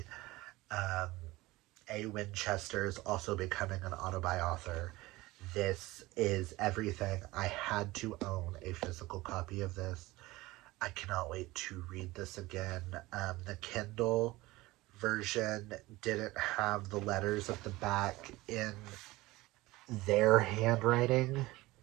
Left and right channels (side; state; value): left; quieter; 19.6 dB